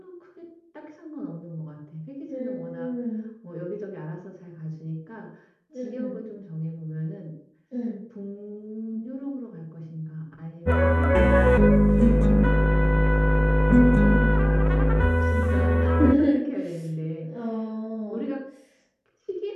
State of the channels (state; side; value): identical; both; correlation 1.00